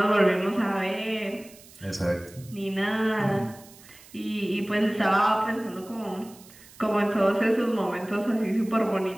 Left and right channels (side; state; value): right; noise; hiss, 22 dB below the sound